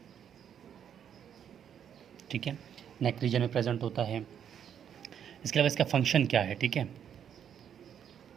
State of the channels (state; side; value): quieter; left; 8.8 dB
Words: ठीक है, नेक रीजन में प्रेजेंट होता है। इसके अलावा इसका फंक्शन क्या है? ठीक है,